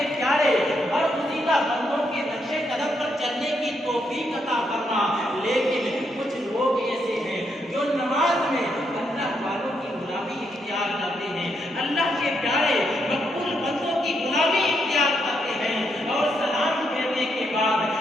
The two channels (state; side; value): normal; both; correlation 0.78